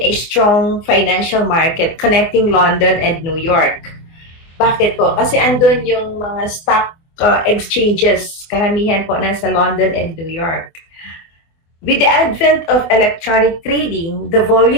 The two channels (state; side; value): late; right; 24 ms